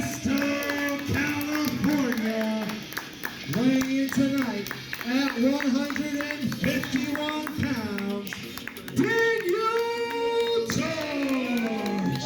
California, weighing in tonight at 151 pounds, Daniel Torch!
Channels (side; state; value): both; identical; correlation 1.00